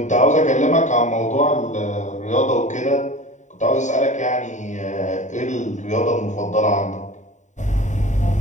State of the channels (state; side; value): late; right; 0.35 ms